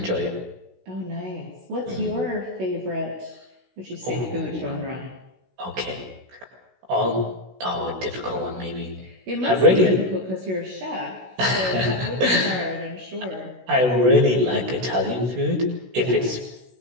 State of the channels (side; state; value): left; late; 16 ms